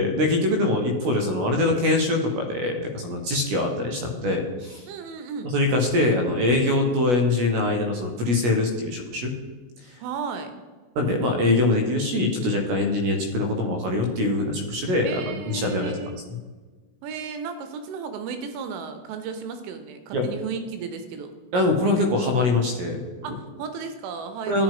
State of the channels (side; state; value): left; late; 16 ms